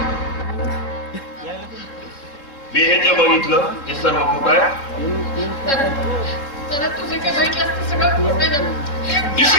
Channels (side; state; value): right; late; 3.6 ms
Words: मी हे जे बघितलं ते सर्व खोटं आहे. तर तुझे काय बघितलं असतं सगळं खोटं आहे ना.